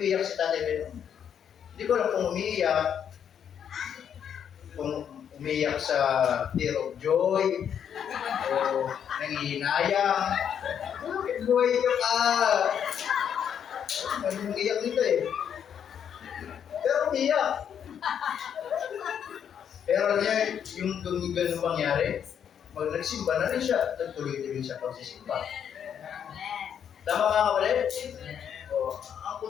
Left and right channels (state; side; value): quieter; right; 8.5 dB